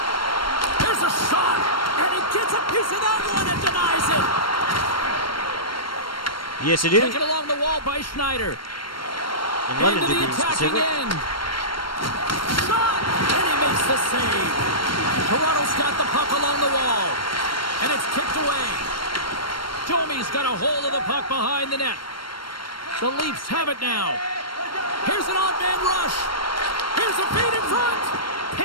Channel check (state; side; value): late; right; 0.73 ms